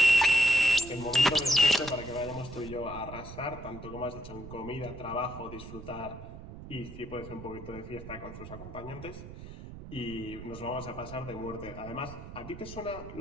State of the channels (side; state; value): right; noise; rumble, 12 dB below the sound